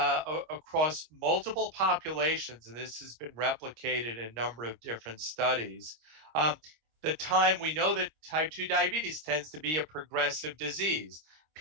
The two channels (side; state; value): left; late; 26 ms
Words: multiple populations, and this has been replicated in a number of different studies, the time we know that type 2 diabetes tends to be a progressive disease.